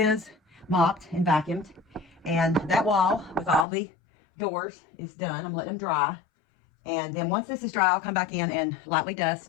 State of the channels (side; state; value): right; drops out; at 3.7 s